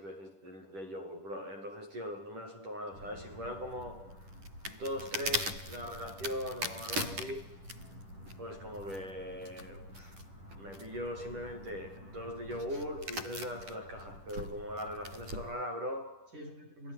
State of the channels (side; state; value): left; late; 10 ms